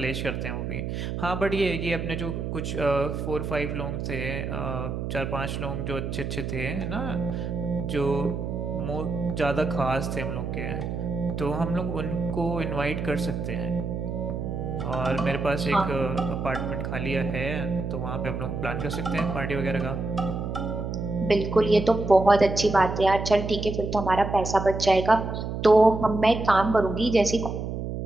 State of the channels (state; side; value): noise; right; hum, 4 dB below the sound